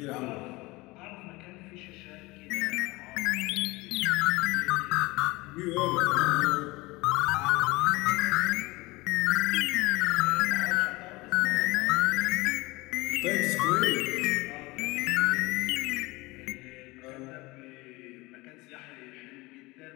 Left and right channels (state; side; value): quieter; right; 22.3 dB